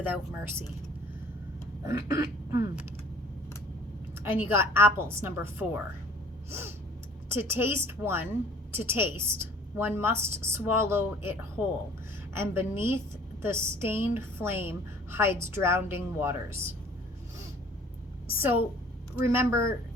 mercy. And you got Apples, number 4. To taste, one must swallow it whole, and beneath the stained flame hides drowning waters. So remember,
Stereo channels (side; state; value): both; normal; correlation 0.52